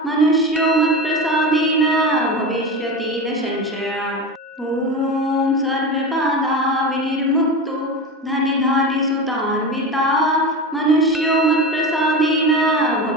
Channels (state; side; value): normal; both; correlation 0.25